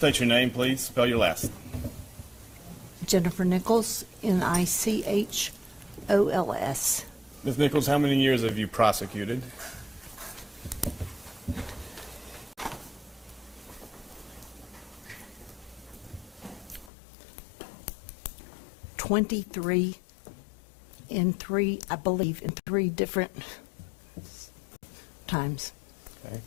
your name, please. Spell your last. Jennifer Nichols, Nichols. Ms. Nichols, how many years have you prosecuted? $23 in three, I believe, in three different times. Okay.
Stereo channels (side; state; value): right; drops out; at 16.9 s